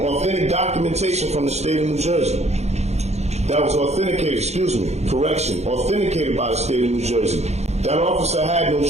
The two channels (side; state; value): left; late; 0.32 ms